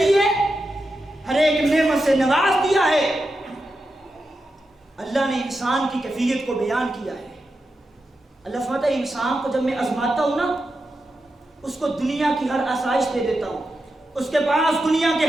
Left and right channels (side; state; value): both; normal; correlation 0.89